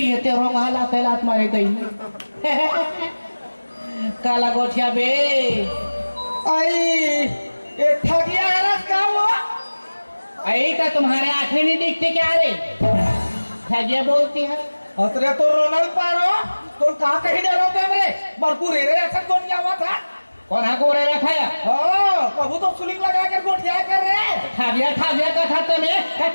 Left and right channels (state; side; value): inverted; both; correlation -1.00